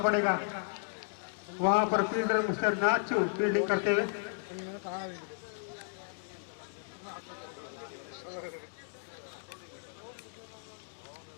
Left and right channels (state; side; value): silent; right; digital silence